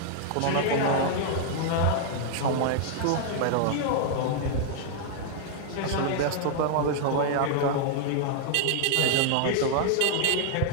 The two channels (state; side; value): different; both; correlation 0.00